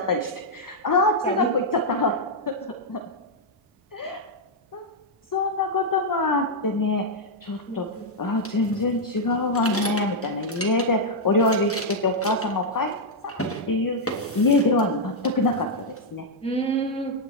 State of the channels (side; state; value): both; normal; correlation -0.03